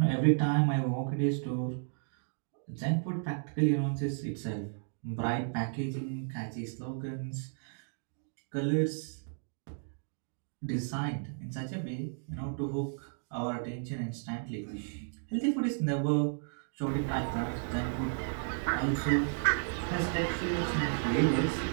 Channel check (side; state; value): left; silent; digital silence